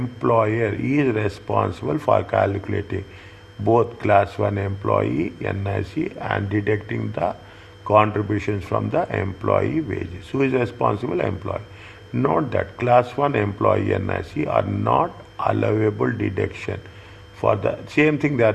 for calculating both class 1 employee NIC and deducting the contributions from the employee wages. Who is responsible? Employer. Note that class 1 employee NIC are not allowable deduction for the same thing they are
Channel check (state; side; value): identical; both; correlation 1.00